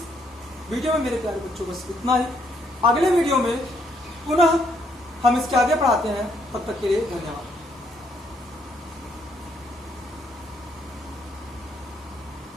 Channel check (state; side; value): normal; both; correlation 0.71